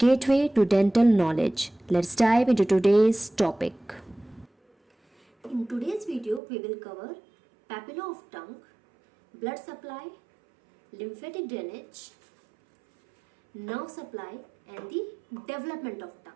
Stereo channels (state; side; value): drops out; left; at 6.4 s